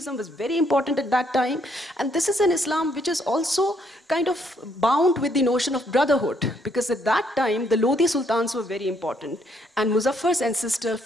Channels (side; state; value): both; normal; correlation 0.70